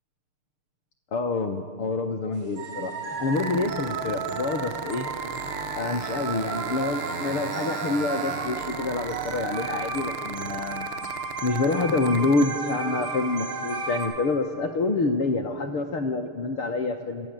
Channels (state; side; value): late; right; 6.6 ms